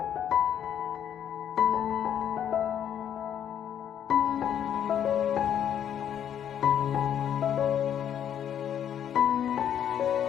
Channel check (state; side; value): quieter; right; 9.5 dB